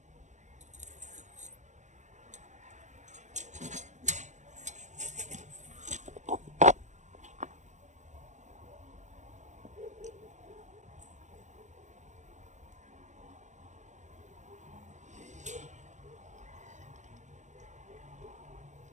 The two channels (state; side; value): late; left; 0.35 ms